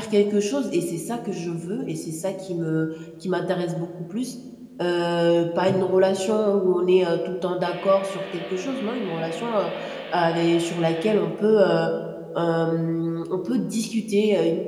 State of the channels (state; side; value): identical; both; correlation 1.00